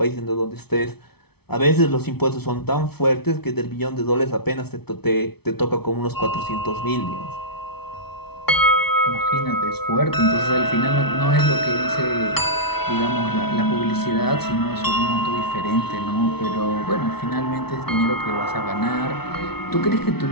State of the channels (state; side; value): late; right; 0.97 ms